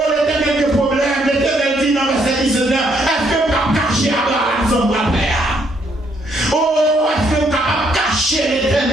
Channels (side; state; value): both; normal; correlation 0.71